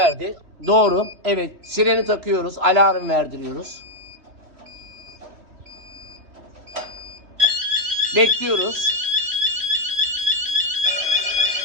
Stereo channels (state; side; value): late; left; 3.3 ms